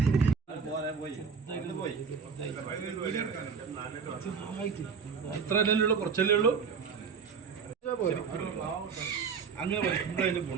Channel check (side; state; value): left; quieter; 5.8 dB